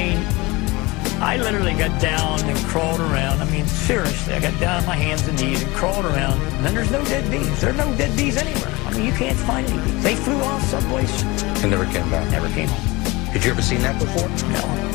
I literally got down and crawled around. I mean, seriously, I got down on my hands and knees and crawled around. And then there's no dead bees. There are no dead bees anywhere. I mean, you can't find any bees. They flew off someplace. And never came back? Never came home. Had you ever seen that before? No.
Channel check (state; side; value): quieter; right; 23.3 dB